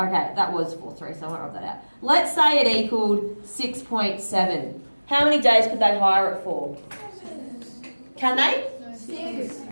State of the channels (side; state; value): both; inverted; correlation -1.00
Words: that was 4.3, so I won't rub that out. Let's say it equaled 6.7. How many days could they hire it for? Can they? 6.